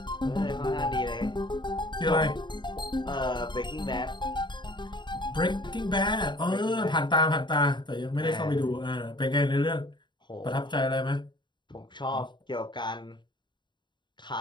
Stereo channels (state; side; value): late; right; 0.22 ms